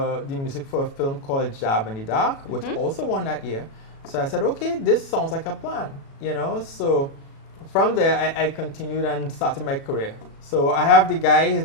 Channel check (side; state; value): right; late; 36 ms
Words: music for a film called Jab in the Dark, which also won that year. So I said, okay, this sounds like a plan, So from there, I continued and started my career. So I have the guy, his